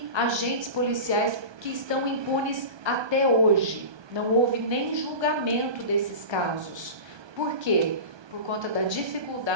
agentes policiais que estão impunes até hoje. Não houve nem julgamento desses casos. Por quê? Por conta da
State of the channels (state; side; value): late; left; 1.2 ms